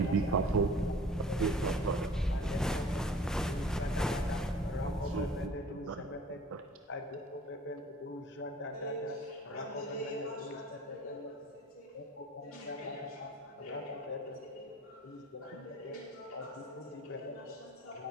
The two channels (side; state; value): both; normal; correlation 0.48